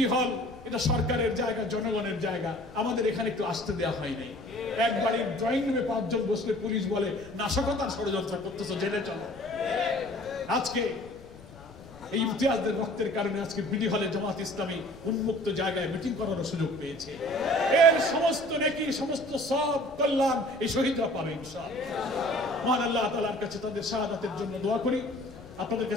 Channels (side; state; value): left; noise; rumble, 21 dB below the sound